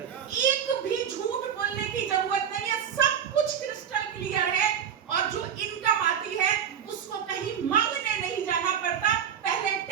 एक भी झूठ बोलने की जरूरत नहीं है, सब कुछ क्रिस्टल क्लियर है। और जो इनकम आती है उसको कहीं मांगने नहीं जाना पड़ता, पहले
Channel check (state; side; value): quieter; left; 8.5 dB